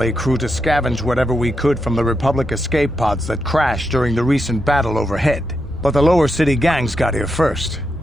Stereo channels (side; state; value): both; normal; correlation 0.84